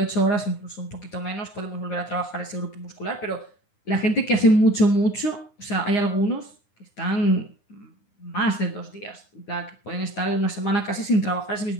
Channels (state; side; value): late; right; 9.7 ms